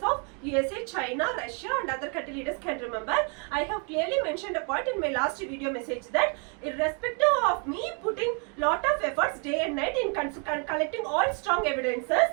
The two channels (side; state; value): left; quieter; 37.9 dB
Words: of USA, China, Russia and other country leaders can remember, I have clearly mentioned a point in my last video message that irrespective of me putting lot of efforts day and night in collecting all strong evidences